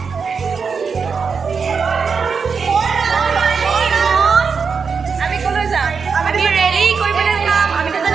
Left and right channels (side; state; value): left; quieter; 5.6 dB